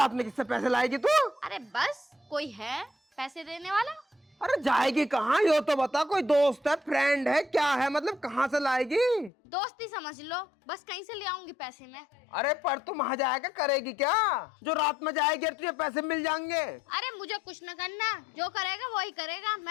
में किससे पैसे लाएगी तू? अरे बस कोई है पैसे देने वाला? अरे जाएगी कहाँ यो तो बता। कोई दोस्त है, फ्रेंड है, क्या है, मतलब कहाँ से लाएगी? दोस्ती समझ लो, बस कहीं से ले आऊंगी पैसे में। अरे पर तू वहाँ जाएगा करेगी क्या? जो रात में जाएगी तुझे पैसे मिल जाएंगे। अरे मुझे कुछ न करना, जो करेगा वही करेगा,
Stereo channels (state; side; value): drops out; right; at 9.3 s